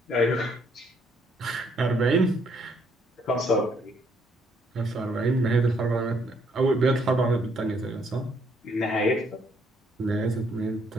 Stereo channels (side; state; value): both; normal; correlation 0.69